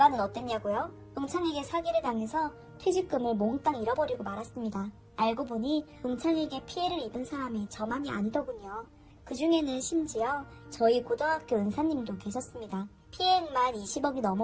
어땠냐고요? 동창에게 사기를 당해서 퇴직금을 몽땅 잃어버리고 말았습니다. 알고 보니 동창에게 피해를 입은 사람이 저만이 아니더군요. 그 중에는 심지어 저희 고등학교 은사님도 계셨습니다. 피해액만 20억이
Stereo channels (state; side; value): identical; both; correlation 1.00